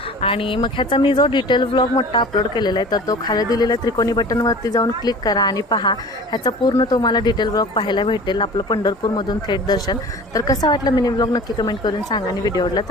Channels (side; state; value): both; normal; correlation 0.41